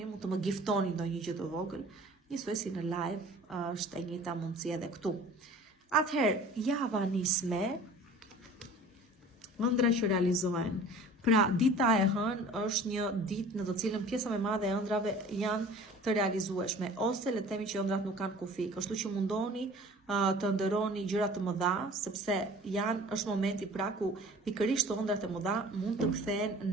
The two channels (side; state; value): both; normal; correlation 0.45